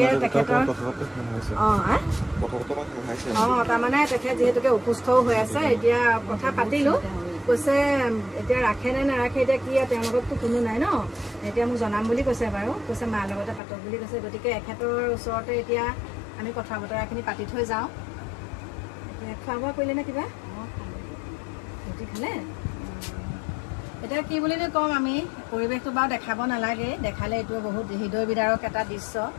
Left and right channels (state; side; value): drops out; right; at 13.6 s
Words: তেখেতৰ তাৰমানে তেখেত যিহেতুকে অসুস্থও হৈ আছে এতিয়া কথা পাতিলোঁ কৈছে এতিয়া ৰাখে নে নাৰাখে এতিয়া কি তেওঁলোকততো কোনো নাই ন এতিয়া মোক জনাম বুলি কৈছে বাৰু কৈছে মাৰ লগতে পাতক বুলি কৈছে গতিকে এখেতৰ ওচৰতে এতিয়া আমি কথা বতৰাখিনি পাতি থৈ যাওঁ এতিয়া খোৱা বোৱা কৰিলে নে কিবা ৰুটি খালে এতিয়া কি বুলি ক'ম আমি পৰিৱেশটো বাৰু দেখাব নালাগে দেখালে এইটো বহুত হৃদয় বিদাৰক এটা দৃশ্য